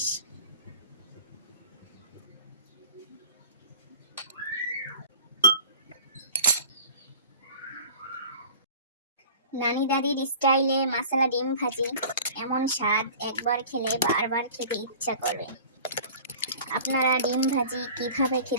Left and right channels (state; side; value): inverted; both; correlation -0.43